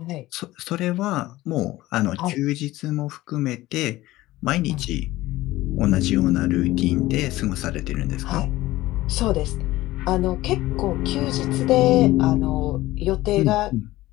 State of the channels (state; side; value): quieter; right; 17.2 dB